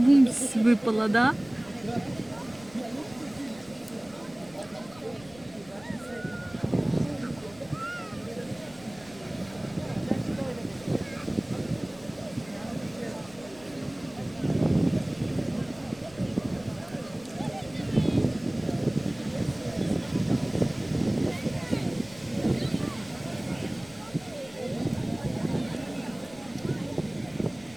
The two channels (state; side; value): noise; left; rumble, 23 dB below the sound